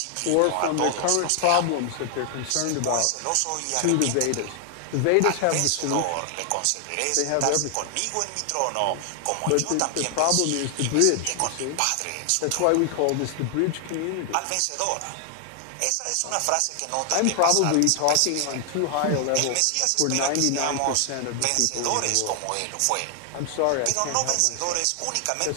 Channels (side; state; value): both; different; correlation 0.00